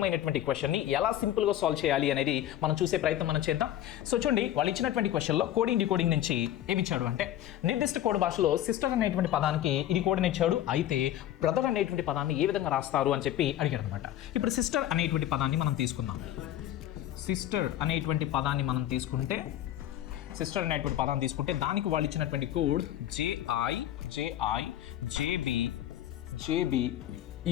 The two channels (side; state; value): right; quieter; 12.5 dB